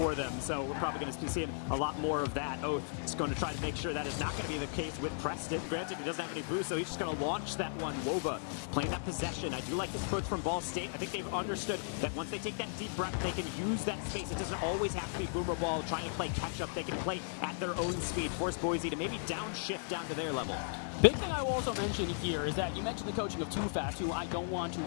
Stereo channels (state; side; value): silent; right; digital silence